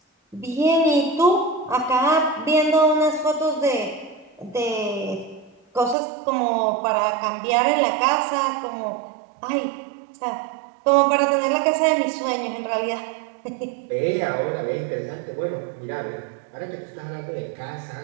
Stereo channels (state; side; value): drops out; left; at 6.0 s